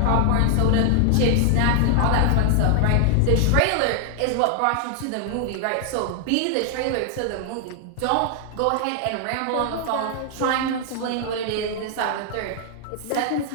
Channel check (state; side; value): different; both; correlation 0.00